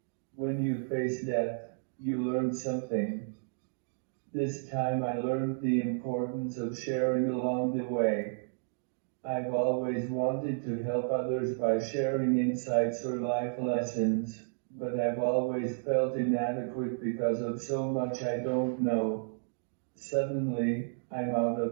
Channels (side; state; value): left; silent; digital silence